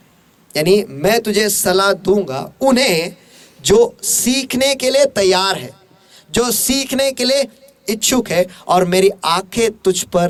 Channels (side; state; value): both; identical; correlation 1.00